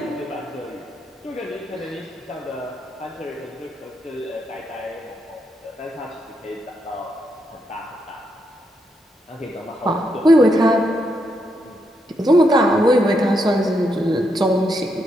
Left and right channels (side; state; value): both; normal; correlation 0.80